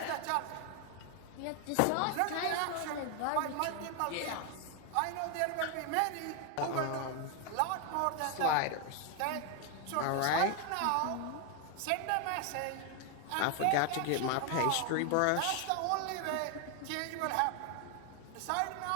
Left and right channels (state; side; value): different; both; correlation 0.00